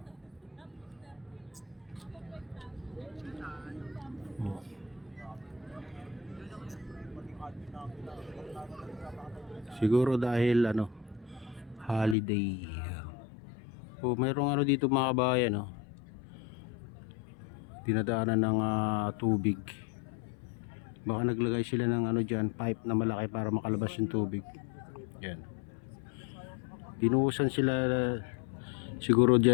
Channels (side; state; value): right; drops out; at 12.2 s